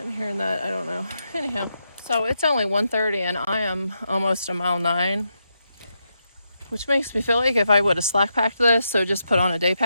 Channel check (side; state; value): both; inverted; correlation -0.84